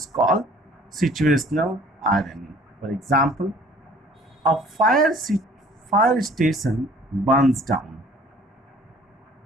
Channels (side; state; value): both; normal; correlation 0.53